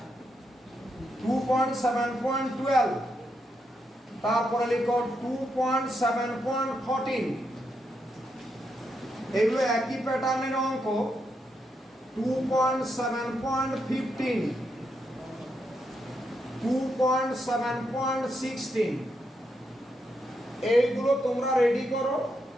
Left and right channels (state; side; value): normal; both; correlation 0.81